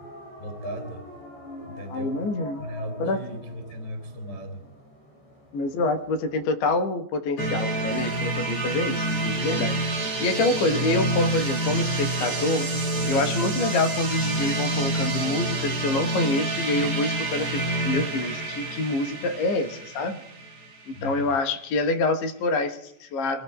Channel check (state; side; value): late; right; 14 ms